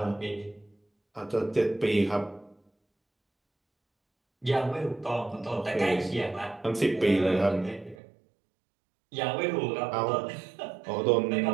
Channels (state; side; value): drops out; left; at 8.0 s